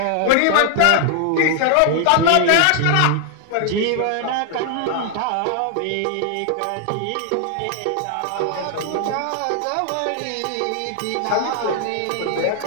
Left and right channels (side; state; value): both; different; correlation 0.00